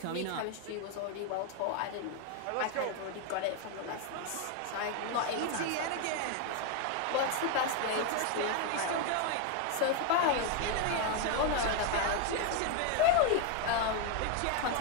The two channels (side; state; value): both; different; correlation 0.01